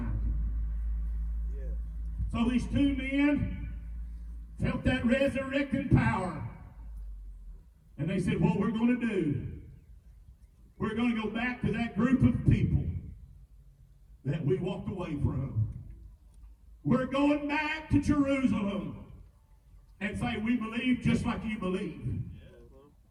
So these two men felt that resurrecting power. And they said, what we're going to do, we're going to go back to that group of people that we walked away from. We're going back to Jerusalem and say, we believe just like you believe.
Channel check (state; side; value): identical; both; correlation 1.00